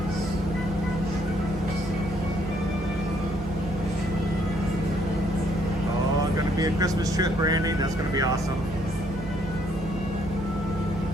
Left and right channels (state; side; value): noise; right; hum, 12 dB below the sound